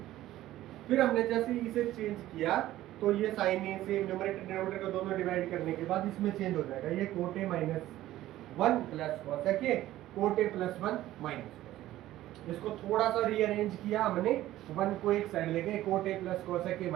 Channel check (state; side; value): quieter; left; 14.7 dB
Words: फिर हमने जैसे इसे चेंज किया तो ये साइन ए से न्यूमरेटर डिनोमिनेटर को दोनों डिवाइड करने के बाद इसमें चेंज हो जाएगा, ये cot A minus 1 plus cosec A cot A plus 1 minus. इसको थोड़ा सा रीअरेंज किया हमने, 1 को एक साइड ले गए, cot A plus cosec A